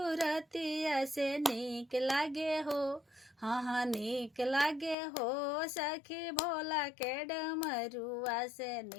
से नीक लागे हो, हाँ हाँ नीक लागे हो, सखी भोला के डमरुआ से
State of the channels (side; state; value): right; drops out; at 5.0 s